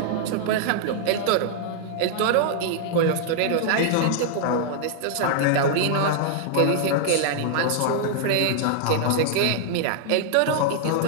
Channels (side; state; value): both; different; correlation -0.01